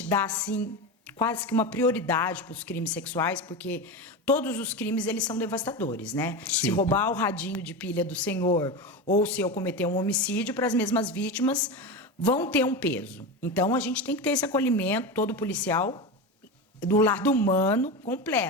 dá, assim, quase que uma prioridade para os crimes sexuais, porque todos os crimes, eles são devastadores, né? Sim. Se roubar o radinho de pilha do senhor ou se eu cometer um homicídio, para as mesmas vítimas vão ter um peso. Então, a gente tem que ter esse acolhimento, todo policial, do lado humano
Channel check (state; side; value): normal; both; correlation 0.21